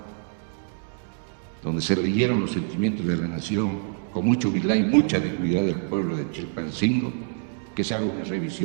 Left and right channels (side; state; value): left; silent; 61 dB below the other